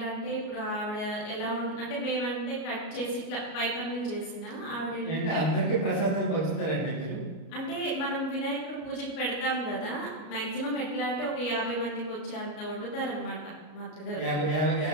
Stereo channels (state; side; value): late; right; 33 ms